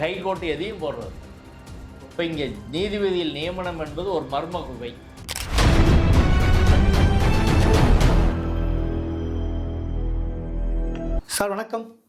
ஹைகோர்ட்டு எதையும் போடுறது. இப்போ இங்கே நீதிபதியில் நியமனம் என்பது ஒரு மர்ம குகை. சார் வணக்கம்.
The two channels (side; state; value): both; identical; correlation 1.00